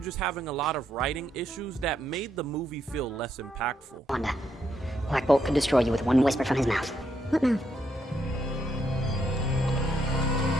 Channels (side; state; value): both; normal; correlation 0.77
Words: having a lot of writing issues that made the movie feel less impactful. Wanda, Black Bolt could destroy you with one whisper from his mouth. What mouth?